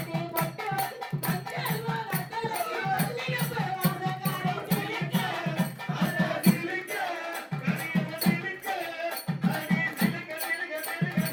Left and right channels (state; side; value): identical; both; correlation 1.00